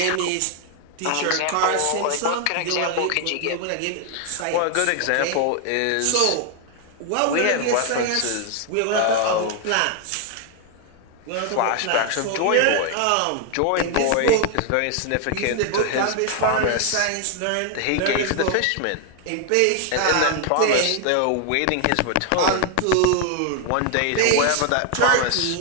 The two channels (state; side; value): different; both; correlation 0.00